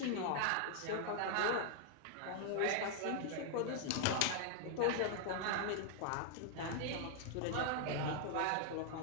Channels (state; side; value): different; both; correlation 0.00